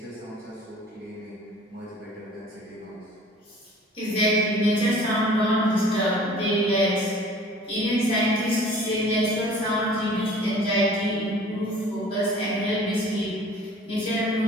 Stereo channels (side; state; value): both; normal; correlation 0.48